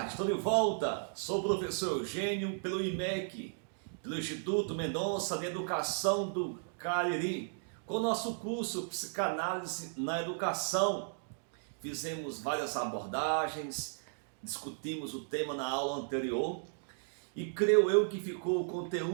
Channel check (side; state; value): left; silent; digital silence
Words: estou de volta. Sou o professor Eugênio pelo IMEC, pelo Instituto Mendonça de Educação do Cariri, com o nosso curso Psicanálise na Educação. Fizemos várias abordagens, discutimos o tema na aula anterior e creio eu que ficou o